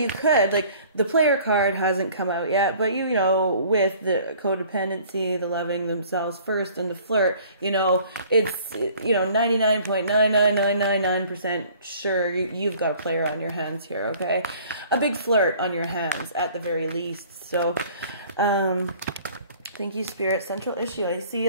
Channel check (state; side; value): inverted; both; correlation -0.52